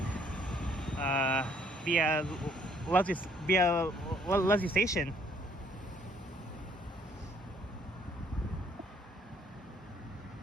via Leslie Station.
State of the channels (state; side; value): normal; both; correlation 0.64